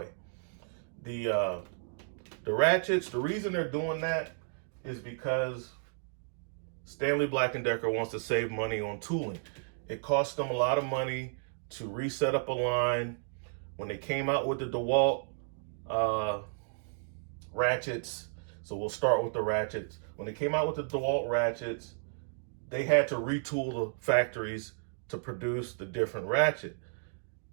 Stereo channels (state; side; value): silent; left; digital silence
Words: The ratchets, the reason they're doing that is because Stanley Black & Decker wants to save money on tooling. It costs them a lot of money to reset up a line. When they came out with the DeWalt ratchets, so we'll start with the ratchets. When they came out with the DeWalt ratchets, they had to retool the factories to produce the different ratchet.